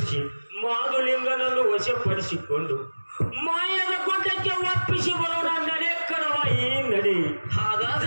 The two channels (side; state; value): both; inverted; correlation -1.00